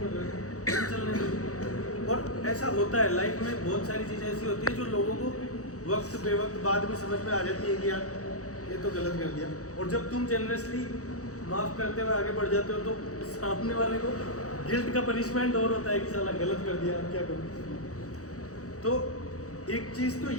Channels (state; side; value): late; right; 0.65 ms